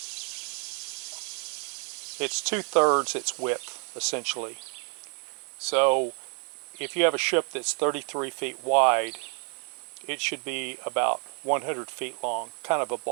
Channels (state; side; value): quieter; left; 38.6 dB